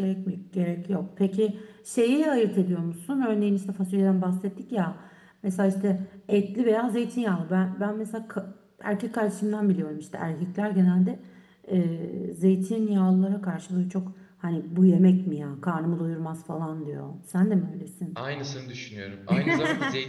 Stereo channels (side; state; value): both; identical; correlation 1.00